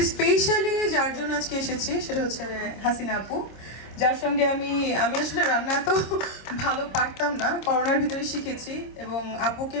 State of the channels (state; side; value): late; right; 26 ms